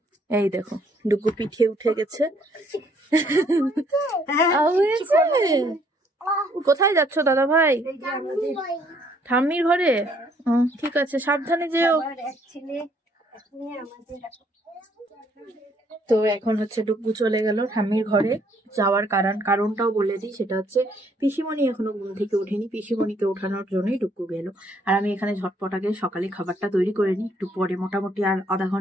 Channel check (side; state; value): both; normal; correlation 0.66